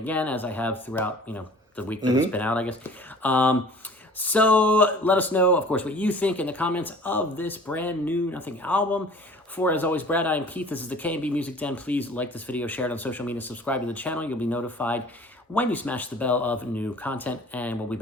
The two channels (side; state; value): both; normal; correlation 0.47